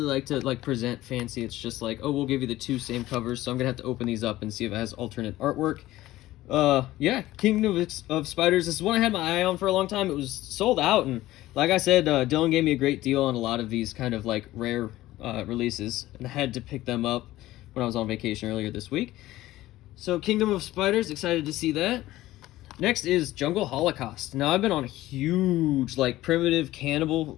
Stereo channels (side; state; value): right; quieter; 16.2 dB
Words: like to present fancy. It's just like, oh, we'll give you the two same covers. So I'm gonna have to open these up and see if it has alternate artwork. Yeah, Kingdom of Spiders. This is one I had my eye on for a long time. It was sold out, and like I said, Dylan gave me a great deal on a lot of these kind of like rare releases, and I had to pick them up when I was on vacation earlier this week. So Kingdom of Spiders, excited to see that. Next is Jungle Holocaust. Now I've been on a huge like primitive cannibal